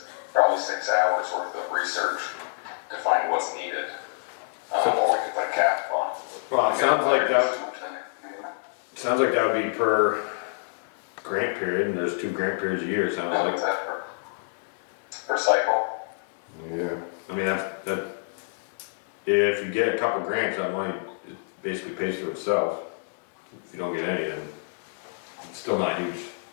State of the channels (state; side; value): silent; right; digital silence